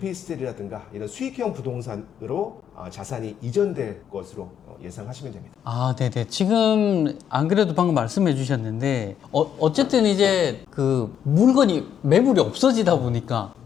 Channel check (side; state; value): right; quieter; 8.9 dB